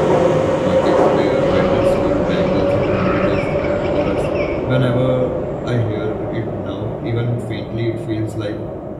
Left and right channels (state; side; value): identical; both; correlation 1.00